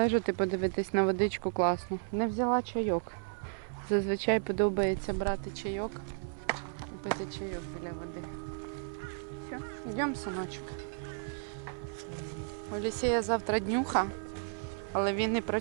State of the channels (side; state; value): left; silent; 55 dB below the other